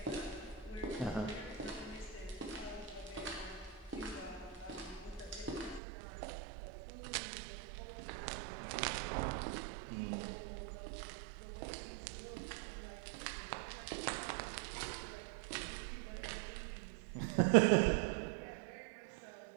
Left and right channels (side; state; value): left; drops out; at 5.8 s